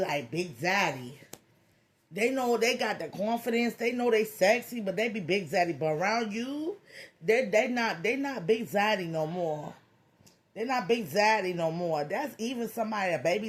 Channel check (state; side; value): identical; both; correlation 1.00